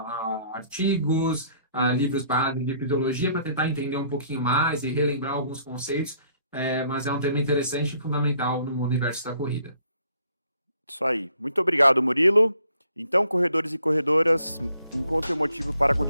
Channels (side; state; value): both; inverted; correlation -0.64